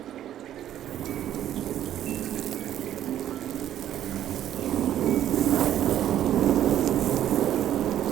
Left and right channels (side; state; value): left; quieter; 11.5 dB